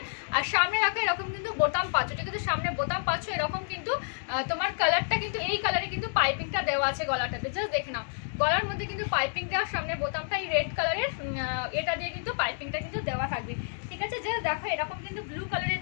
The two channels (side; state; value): right; silent; digital silence